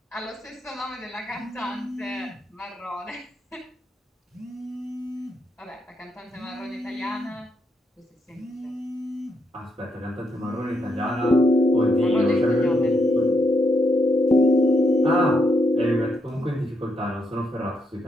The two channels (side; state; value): both; normal; correlation 0.79